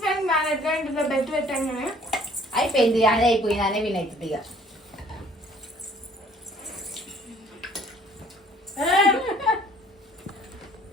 ఫ్రెండ్ మేనేజ్మెంట్ బెస్ట్ పెట్టంగానే అయిపోయింది, అదే అయిపోయింది, అనే వినవుతుంది ఇక.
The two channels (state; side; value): normal; both; correlation 0.56